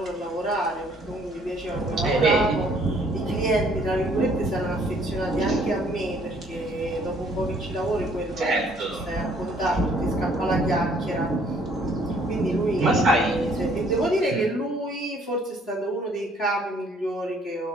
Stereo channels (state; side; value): normal; both; correlation 0.61